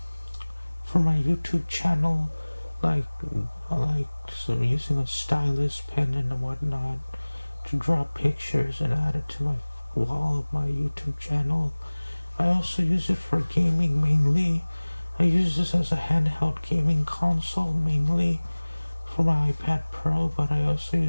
for my YouTube channel, like so using a stylus, pen, and whatnot to draw pictures and add it to my wall of my YouTube channel. I also use it for gaming mainly. I use this as a handheld gaming console mainly for my iPad Pro, but I also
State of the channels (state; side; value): inverted; both; correlation -1.00